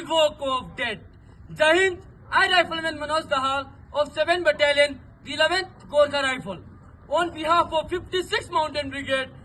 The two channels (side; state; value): both; identical; correlation 1.00